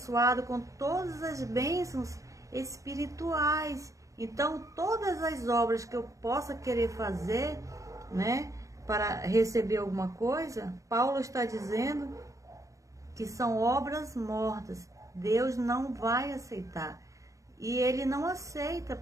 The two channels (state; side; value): late; left; 0.16 ms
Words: com todas as bênçãos espirituais. Então, todas as obras que eu possa querer fazer, né, para receber alguma coisa, Paulo está dizendo que são obras mortas. Deus não vai aceitar. E ele não aceita